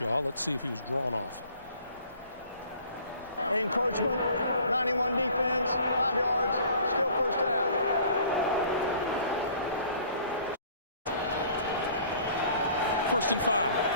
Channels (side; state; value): both; inverted; correlation -0.53